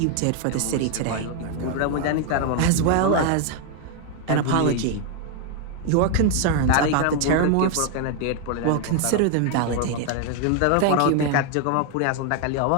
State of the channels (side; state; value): both; different; correlation 0.00